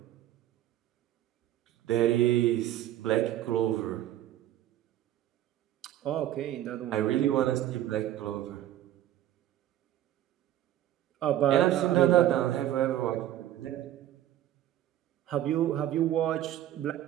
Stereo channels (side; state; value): left; quieter; 12.8 dB